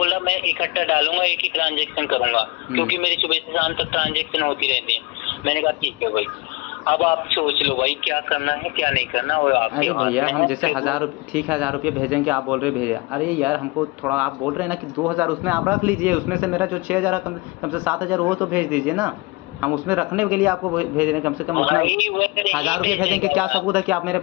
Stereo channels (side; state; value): right; quieter; 25.2 dB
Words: मैं इकट्ठा डालूंगा, एक ही ट्रांजेक्शन करूंगा, क्योंकि मेरी सुबह से शाम तक ट्रांजेक्शन होती रहती है। मैंने कहा ठीक है भाई, अब आप सोच लो भाई क्या करना है क्या नहीं करना, वो आपके अरे हाथ भैया में हम है। जैसे 1,000 रुपये, ठीक है 1,000 रुपये भेजेंगे, आप बोल रहे भेजे, अरे यार हमको थोड़ा, आप बोल रहे हैं ना कि 2,000 उसमें आप रख लीजिए, उसमें से मेरा जो 6,000 कम से 7,000 वो तो भेज दीजिए ना। हम उसमें रखने के लिए आपको भेज रहे हैं, कम से कम उतना। भाई वो नहीं 1,000 रुपये भेजेंगे, भेजेगा। क्या सबूत है कि आप मेरे